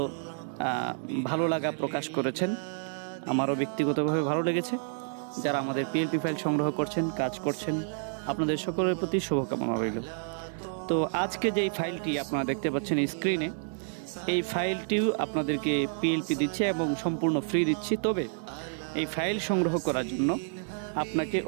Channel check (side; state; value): left; silent; digital silence